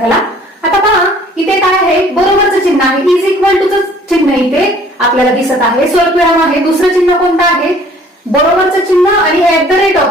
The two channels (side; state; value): both; normal; correlation 0.54